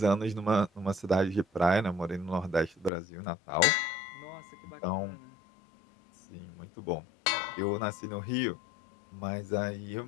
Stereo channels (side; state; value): right; drops out; at 2.9 s